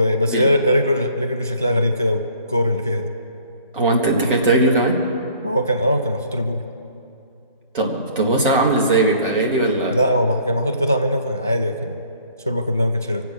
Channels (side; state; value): both; inverted; correlation -0.55